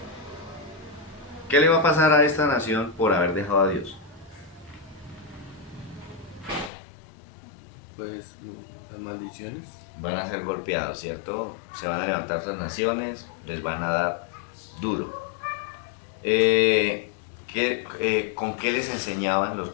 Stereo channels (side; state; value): right; drops out; at 6.7 s